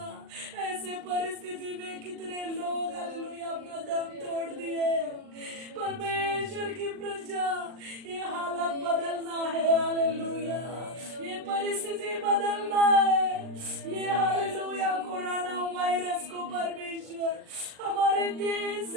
ऐसे परिस्थिति में कितने लोग हालेलुया अपना दम तोड़ दिए परमेश्वर की प्रजा ये हालत बदलना है हालेलुया ये परिस्थिति बदलना है ये हालेलुया कोरोना वायरस को परमेश्वर हमारे देश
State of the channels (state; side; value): late; left; 39 ms